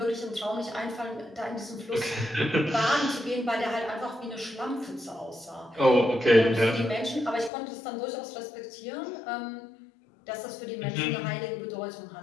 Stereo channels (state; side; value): drops out; right; at 7.5 s